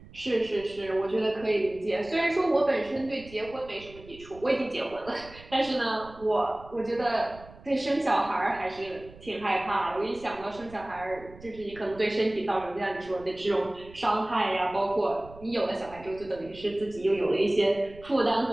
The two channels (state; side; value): noise; right; rumble, 20 dB below the sound